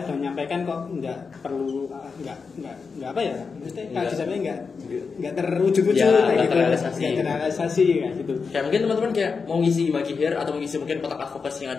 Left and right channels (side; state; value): right; quieter; 5.2 dB